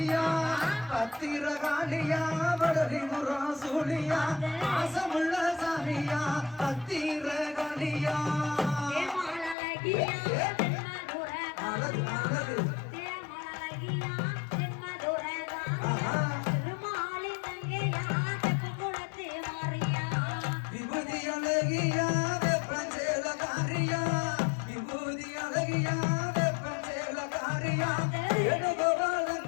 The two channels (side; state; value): right; drops out; at 9.6 s